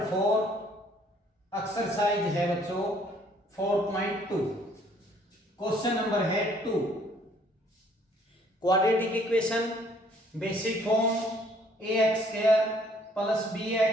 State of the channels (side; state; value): both; normal; correlation 0.61